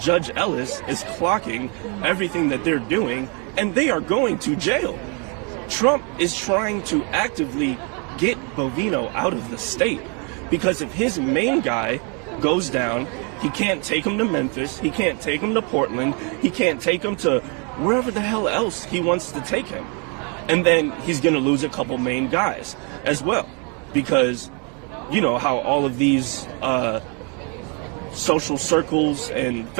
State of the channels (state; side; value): quieter; left; 35.0 dB